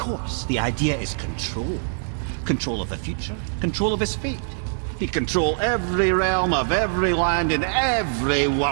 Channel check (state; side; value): silent; left; digital silence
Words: the idea is control. Control of the future, control of his fate. He'd control every realm of every land in every